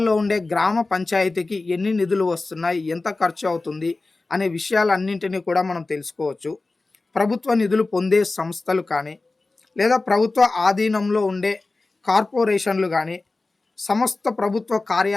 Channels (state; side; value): quieter; right; 3.4 dB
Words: ఉండే గ్రామ పంచాయతీకి ఎన్ని నిధులు వస్తున్నాయి, ఎంత ఖర్చు అవుతుంది అనే విషయాలన్నింటినీ కూడా మనం తెలుసుకోవచ్చు. ప్రభుత్వ నిధులు పొందే సంస్థలు కానీ, లేదా ప్రభుత్వ ఆధీనంలో ఉండే కార్పొరేషన్లు కానీ, సమస్త ప్రభుత్వ